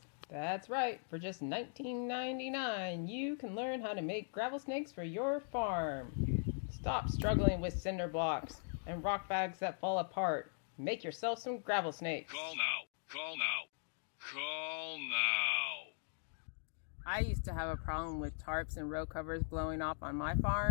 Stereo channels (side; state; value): right; silent; digital silence